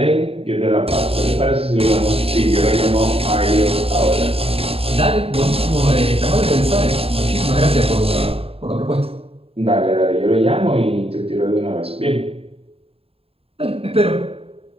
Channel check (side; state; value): left; late; 0.28 ms